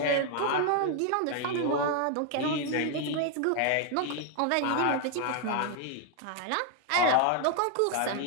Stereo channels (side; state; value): both; different; correlation 0.01